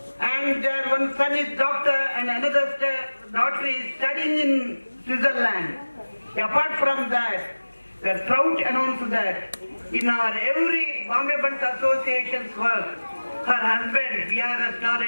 And their one son is doctor and another daughter is studying in Switzerland. Apart from that, we are proud to announce that in our every Bombay Buns Association's work, her husband, VR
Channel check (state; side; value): inverted; both; correlation -1.00